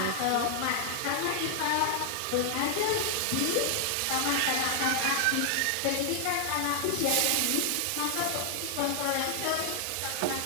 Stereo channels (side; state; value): both; different; correlation 0.00